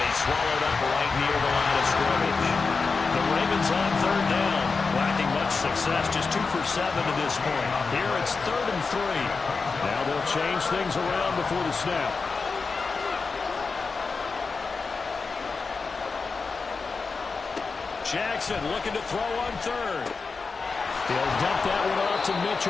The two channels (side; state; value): right; quieter; 4.5 dB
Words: he's swallowed up right near the line of scrimmage. The Ravens on 3rd down. Lacking much success, just 2 for 7 to this point. Here it's 3rd and 3. Now they'll change things around before the snap. Jackson looking to throw on 3rd. He'll dump that one off to